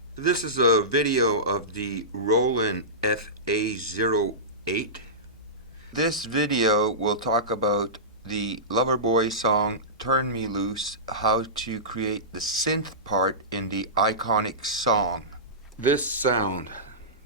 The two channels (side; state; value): both; normal; correlation -0.19